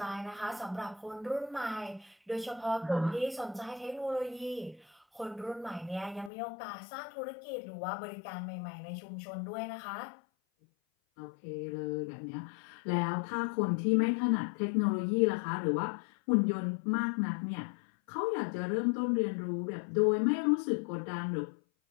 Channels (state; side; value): drops out; right; at 6.3 s